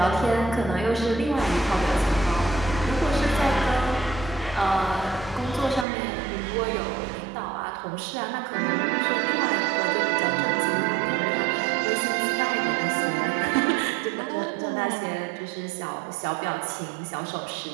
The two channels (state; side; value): drops out; left; at 5.9 s